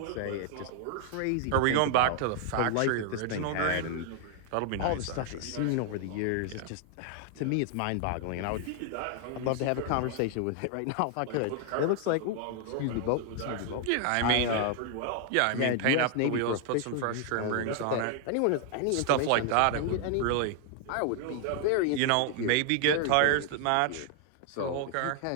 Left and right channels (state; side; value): different; both; correlation 0.00